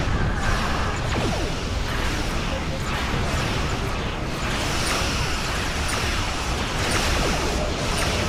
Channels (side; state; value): both; identical; correlation 1.00